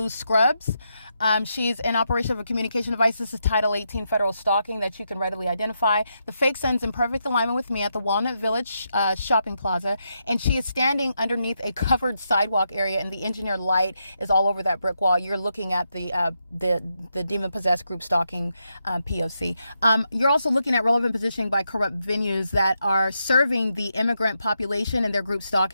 scrubs. She's in operation of a communication device. This is Title 18 federal stalking that you can readily identify. The fake sun's in perfect alignment with me at the Walnut Village shopping plaza, and she is standing underneath a covered sidewalk area, and the engineered light is all over that brick wall. You're looking at the demon-possessed group stalking P.O.C. You're also looking at relevant positioning by corrupt venues that are serving the immigrant population and their group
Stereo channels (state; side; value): inverted; both; correlation -0.83